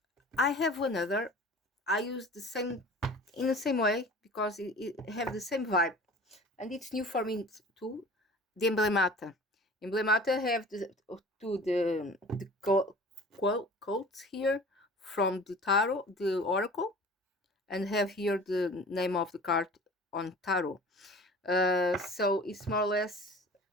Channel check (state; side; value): normal; both; correlation 0.43